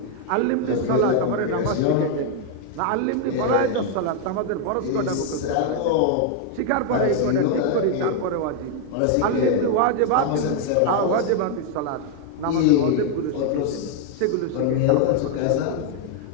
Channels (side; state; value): both; different; correlation 0.00